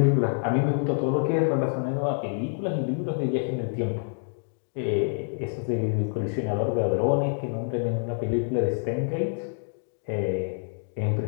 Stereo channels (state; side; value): silent; right; digital silence